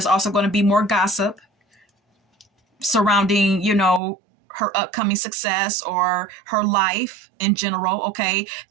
also going to be more gossip surrounding, her upcoming success or her life in general. Okay,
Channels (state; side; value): drops out; left; at 4.0 s